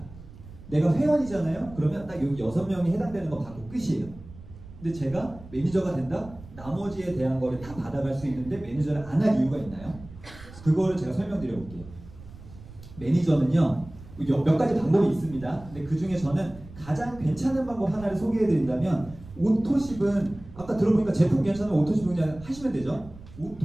내가 회원이잖아요. 그러면 딱 여기 6명이 해당되는 거 받고 끝이에요. 근데 제가 매니저가 된다? 나머지에 대한 거를 다 받아갈 수 있는데 매니저를 안 할 이유가 있나요? 그거를 제가 설명드려 볼게요. 매니저는요, 몇 가지 방법이 있습니다. 근데 그 중에 저는 가장 괜찮은 방법 하나를 소개해 드린다면, 오토십은 아까 들어보니까 제품 괜찮으면 오토십 그냥 하시면 되죠.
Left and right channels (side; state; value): right; noise; rumble, 18 dB below the sound